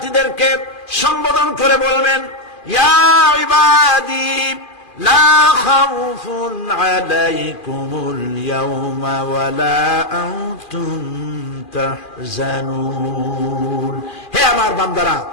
সম্বোধন করে বলবেন, ইয়া ইবাদি লা খাউফুন আলাইকুমুল ইয়াওমা ওয়ালা আনতুম তাহজানুন। হে আমার বান্দারা,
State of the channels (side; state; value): right; late; 2.4 ms